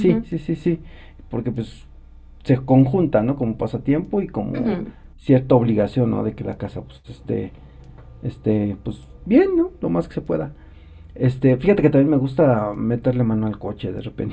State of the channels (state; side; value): identical; both; correlation 1.00